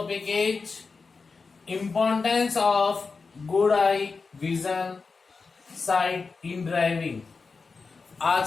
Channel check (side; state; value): right; quieter; 4.5 dB